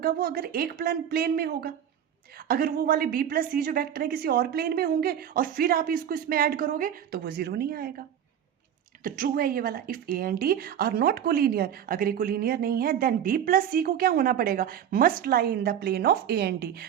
वो, अगर एक प्लेन में होगा। अगर वो वाले बी प्लस सी जो वेक्टर है किसी और प्लेन में होंगे और फिर आप इसको इसमें ऐड करोगे तो वो 0 नहीं आएगा। तो ट्रू है ये वाला, if a and d are not collinear, अगर ये कोलिनियर नहीं है देन बी प्लस सी को क्या होना पड़ेगा, must lie in the plane of A and D,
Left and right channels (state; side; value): quieter; left; 9.5 dB